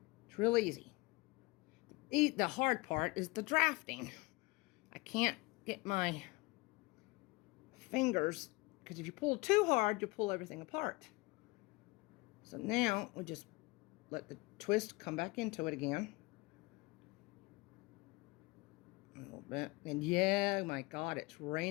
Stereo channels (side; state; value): right; quieter; 24.2 dB